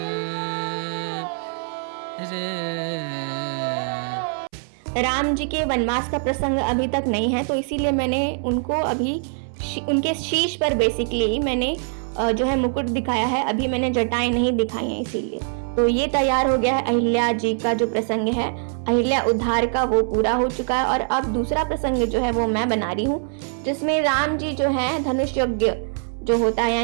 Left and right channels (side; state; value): left; silent; 63 dB below the other